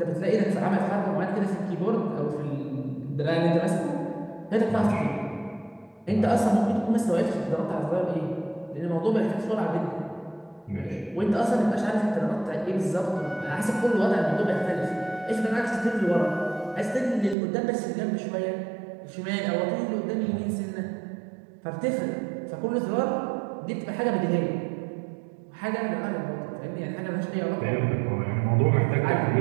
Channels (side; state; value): left; drops out; at 17.4 s